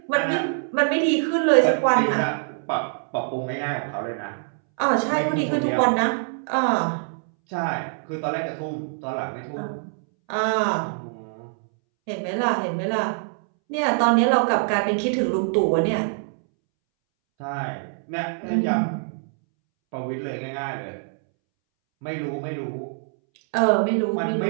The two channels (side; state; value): left; silent; 62 dB below the other